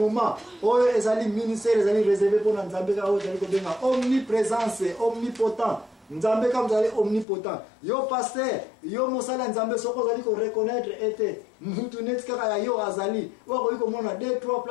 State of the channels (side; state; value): right; drops out; at 7.2 s